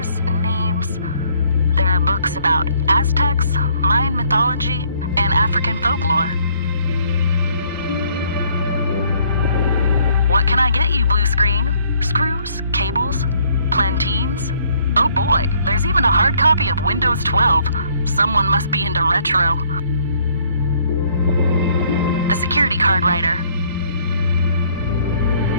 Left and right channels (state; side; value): inverted; both; correlation -0.64